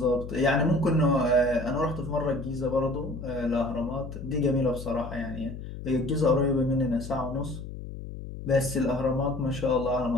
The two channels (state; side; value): noise; left; hum, 10 dB below the sound